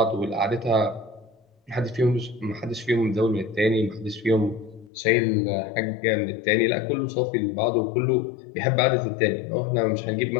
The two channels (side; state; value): right; drops out; at 4.9 s